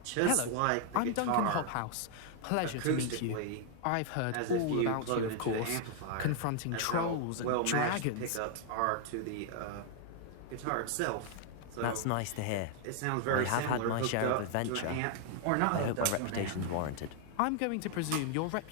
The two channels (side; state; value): both; different; correlation 0.00